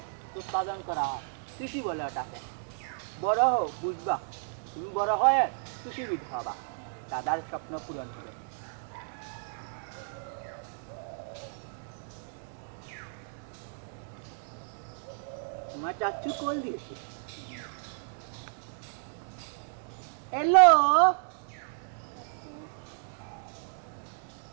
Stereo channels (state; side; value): silent; left; digital silence